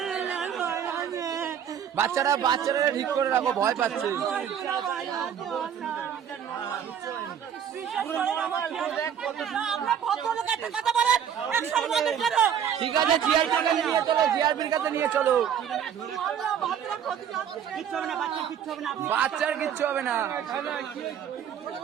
বাচ্চারা ঠিক করে রাখো, ভয় পাচ্ছে। ঠিক আছে, জিআরপির কাছে নিয়ে চলো। বাচ্চার কিচ্ছু হবে না।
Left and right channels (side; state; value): left; quieter; 8.7 dB